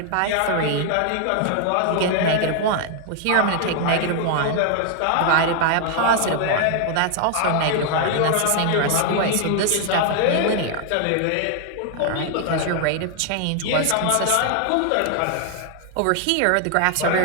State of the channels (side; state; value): both; different; correlation 0.00